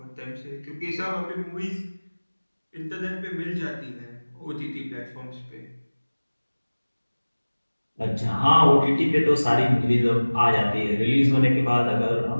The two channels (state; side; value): inverted; both; correlation -1.00